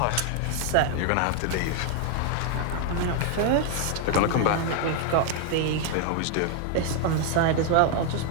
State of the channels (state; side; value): different; both; correlation 0.00